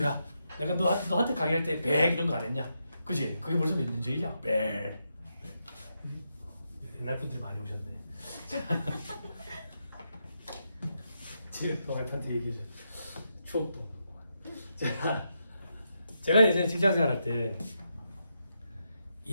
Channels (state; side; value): inverted; both; correlation -0.83